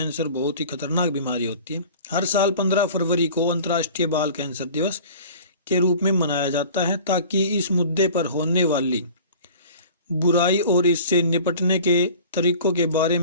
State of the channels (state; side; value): inverted; both; correlation -0.44